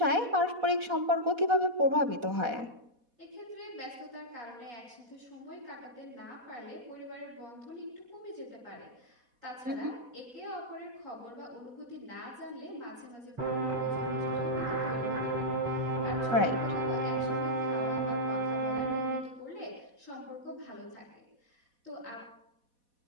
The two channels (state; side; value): late; left; 4.1 ms